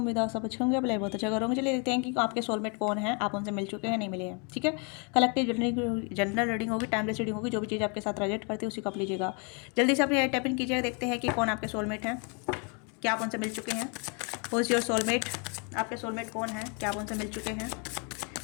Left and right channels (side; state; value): right; quieter; 35.7 dB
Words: है आप सब अच्छे होंगे। अप्लाई बहुत अच्छा करोगे। चलिए देखते हैं कि आपके सोलमेट कौन है, आप उनसे मिल चुके हैं नहीं मिले हैं। ठीक है, कलेक्टिव जनरल रीडिंग होगी, टाइमलेस रीडिंग होगी। जो भी चीज़ आपके साथ रिलेट करती है उसी को आप लीजिएगा। जल्दी से अपने टाइप इन कीजिएगा, देखते हैं कि कौन आपके सोलमेट हैं, क्या आप उनसे मिल चुके हैं। हु इज़ योर सोलमेट, आपके सोलमेट कौन है, क्या आप उनसे मिल चुके हैं।